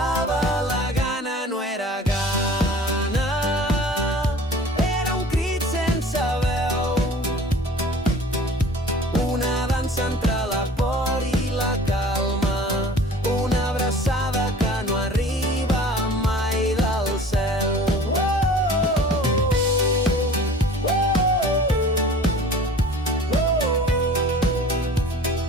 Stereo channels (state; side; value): normal; both; correlation 0.45